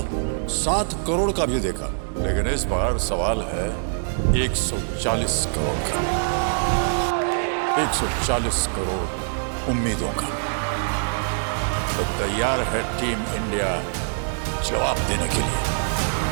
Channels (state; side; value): silent; left; digital silence